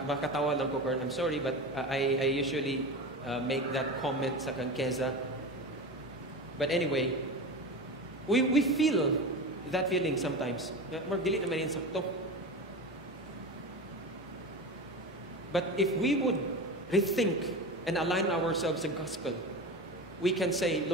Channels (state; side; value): normal; both; correlation 0.26